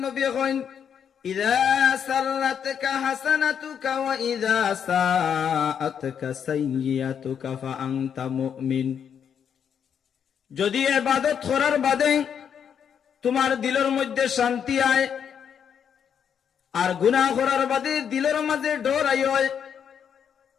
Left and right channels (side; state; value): right; quieter; 7.9 dB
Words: নবী কইন, ইযা সাররাতকা হাসানাতুকা ওয়া ইযা সাআতকা সাইয়্যাতুকা ফা আনতা মুমিন। যদি ইবাদত করার বাদে তোমার দিলের মধ্যে শান্তি আয়, আর গুনাহ করার বাদে দিলের মাঝে ডর আয়,